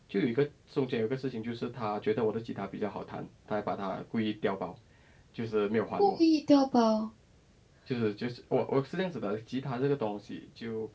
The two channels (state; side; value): identical; both; correlation 1.00